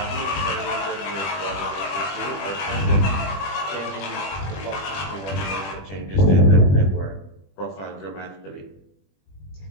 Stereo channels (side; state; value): right; late; 21 ms